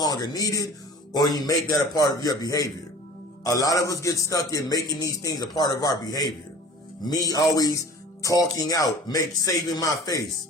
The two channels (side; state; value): both; normal; correlation 0.44